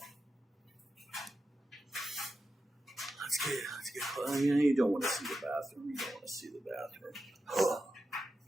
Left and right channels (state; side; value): normal; both; correlation 0.90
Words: Let's get. You don't want to see the bathroom. You don't want to see the bathroom.